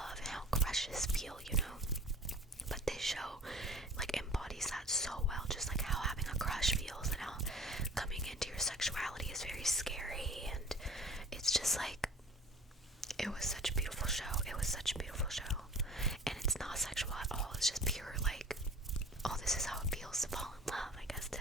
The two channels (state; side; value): normal; both; correlation 0.45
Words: and how crushes feel, you know. But this show like embodies that so well, just like how having a crush feels and how coming into your sexuality is very scary. And it's just like, it was such a beautiful show. It was such a beautiful show. And it's not sexual at all. It's just pure like, oh, this is how it feels to fall in love, I guess, to,